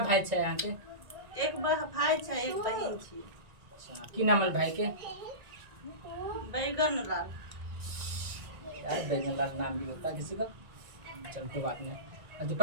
छे यहाँ के? एक भाई छै एक बहिन छी। अच्छा की नाम है भाई के? बैगन लाल। यार बैगन लाल नाम भी होता है किसी का। चल कोई बात नहीं। अभी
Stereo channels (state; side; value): late; left; 1.9 ms